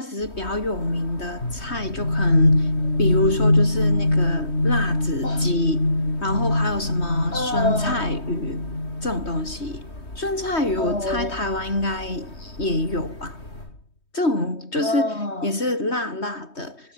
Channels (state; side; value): late; right; 3.2 ms